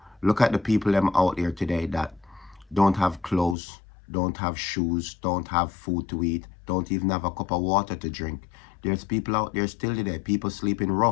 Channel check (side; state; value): right; drops out; at 3.6 s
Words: look at the people them out there today that don't have clothes, don't have shoes, don't have food to eat, don't even have a cup of water to drink. There's people out there still today, people sleeping